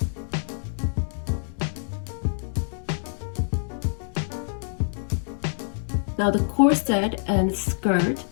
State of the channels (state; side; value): silent; right; digital silence